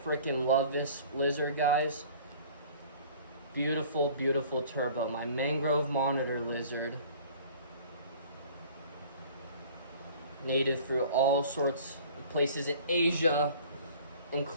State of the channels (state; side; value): inverted; both; correlation -0.48